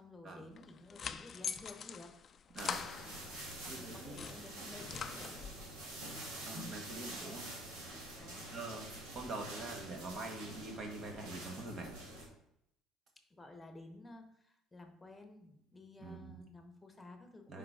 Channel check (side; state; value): both; normal; correlation 0.56